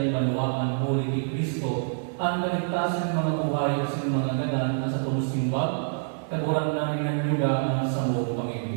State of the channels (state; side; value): silent; left; digital silence